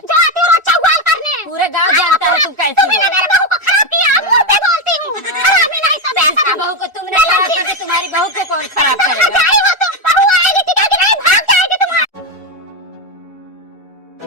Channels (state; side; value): normal; both; correlation 0.08